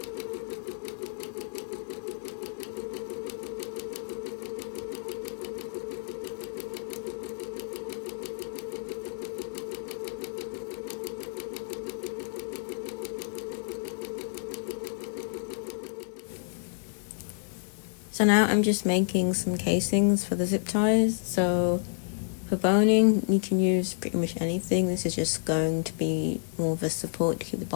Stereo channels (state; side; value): silent; right; digital silence